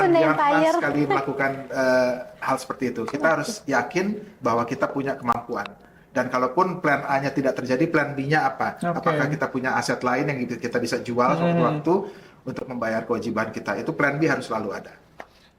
pernah Empire. sekali melakukan hal seperti itu. Kita harus yakin bahwa kita punya kemampuan. Dan kalaupun plan A-nya tidak terjadi, plan B-nya apa? Oke. Apakah kita punya aset lain yang kita bisa jual sewaktu-waktu untuk membayar kewajiban kita? Itu plan B harus selalu ada.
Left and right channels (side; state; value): both; identical; correlation 1.00